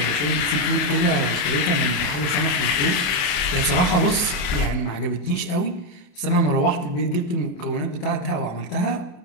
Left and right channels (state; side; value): late; right; 28 ms